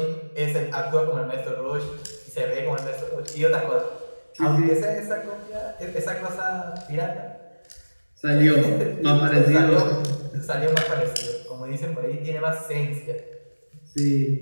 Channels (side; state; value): both; inverted; correlation -1.00